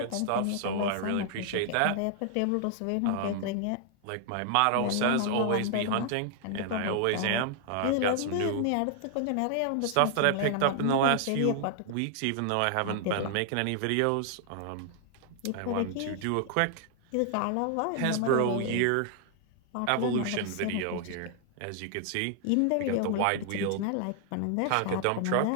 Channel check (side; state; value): both; different; correlation 0.00